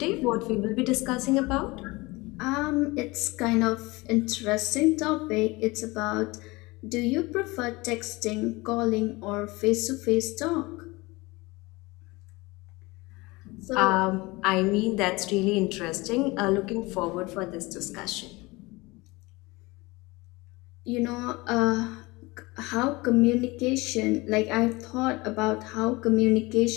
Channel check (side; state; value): right; quieter; 22.9 dB